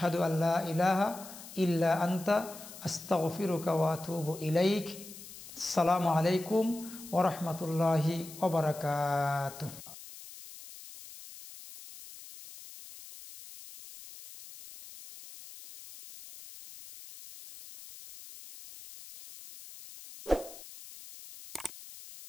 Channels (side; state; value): left; noise; hiss, 16 dB below the sound